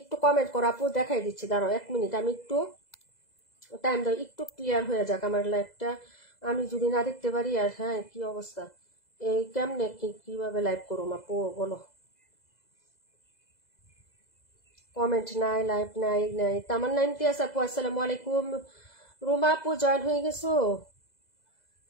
কমেন্ট করো আপু, দেখাই দিচ্ছি। দাঁড়াও 1 মিনিট, আমি একটু টাইম দাও, একটু ক্লিয়ার হয়ে যাক আমার লাইভটা। আমি যদি না দেখতে পারি আর। হ্যাঁ কি অবস্থা, এই কেমনে কিভাবে লাইভ করুম আপু বলো? কমেন্ট নাই, লাইভ নাই নাই। তামান্না ইমতিয়াজ আপু আসসালামু আলাইকুম। রুমা আপু জয়েন হয়ে গেছো?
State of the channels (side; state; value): right; late; 2.0 ms